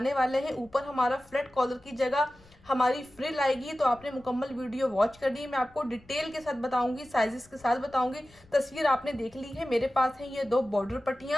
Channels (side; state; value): left; noise; rumble, 27 dB below the sound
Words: वाले हैं। ऊपर हमारा फ्लैट कॉलर की जगह हमारी फ्रिल आएगी। तो आपने मुकम्मल वीडियो वॉच कर दी, मैं आपको डिटेल के साथ बताऊंगी, साइजेस के साथ बताऊंगी। तस्वीर आपने देख ली है, मेरे पास है ये 2 बॉर्डर